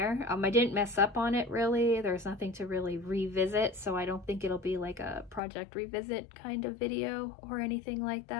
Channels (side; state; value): right; drops out; at 5.4 s